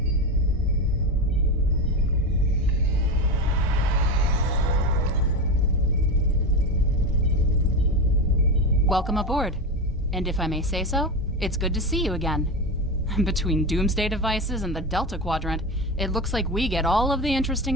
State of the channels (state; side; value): normal; both; correlation 0.19